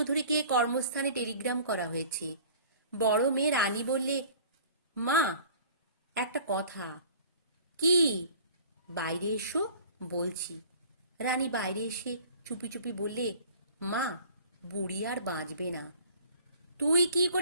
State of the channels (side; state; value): both; inverted; correlation -0.48